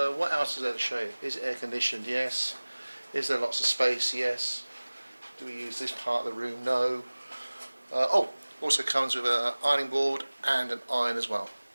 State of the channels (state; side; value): inverted; both; correlation -1.00